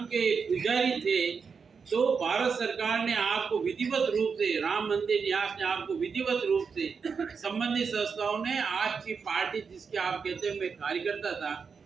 के पुजारी थे तो भारत सरकार ने आपको विधिवत रूप से, राम मंदिर न्यास ने आपको विधिवत रूप से, संबंधित संस्थाओं ने आपकी पार्टी जिसके आप कहते हैं मैं कार्यकर्ता था,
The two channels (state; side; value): quieter; left; 5.7 dB